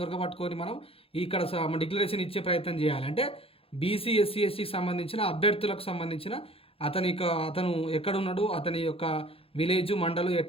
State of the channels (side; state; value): right; late; 0.27 ms